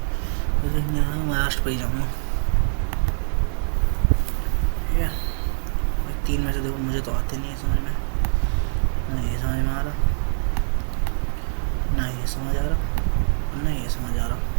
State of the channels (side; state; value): left; silent; 63 dB below the other